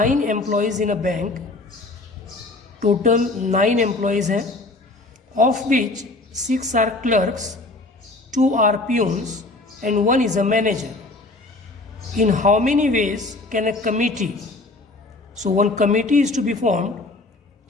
employees in a bank. Total 9 employees हैं, of which 6 are clerks, 2 are peons and 1 is a manager. In how many ways can a committee, so one committee is to be formed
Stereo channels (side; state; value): right; quieter; 3.0 dB